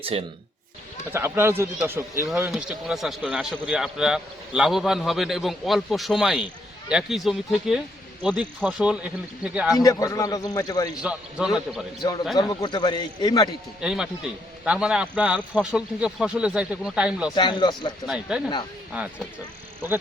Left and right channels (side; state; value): both; normal; correlation 0.74